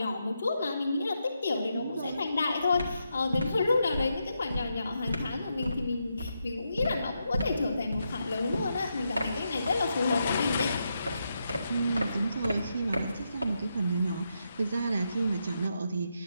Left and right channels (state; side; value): inverted; both; correlation -0.83